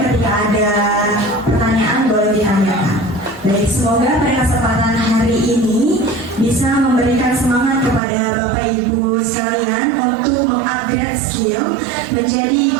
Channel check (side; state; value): left; drops out; at 8.0 s